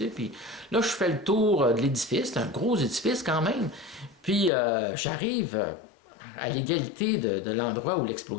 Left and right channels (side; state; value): right; drops out; at 4.5 s